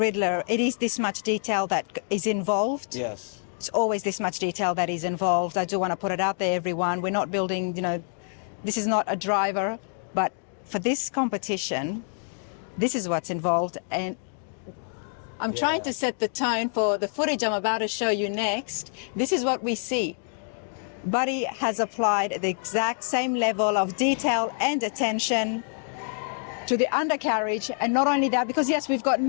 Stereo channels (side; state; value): right; silent; 60 dB below the other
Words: it is this much detail that is involved. Yes. It's always this much detail that is involved. I do want to put it out there, everyone. We're not building, you know, this is not a driver, but for this competition, this is what's involved. And I'm trying to set the tone for the footage I'm about to show you next. This is what we see. Buddy has applied the exact same level of detail and attention to the undercarriage, and not only that, because yes, we've got